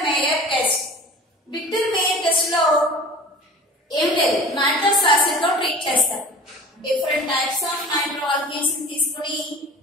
Meyer test. Victor Meyer test లో ఏం లేదు, నైట్రస్ యాసిడ్ తో ట్రీట్ చేస్తారు. డిఫరెంట్ టైప్స్ ఆఫ్ నైట్రోఆల్కేన్స్ ని తీసుకుని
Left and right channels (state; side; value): normal; both; correlation 0.40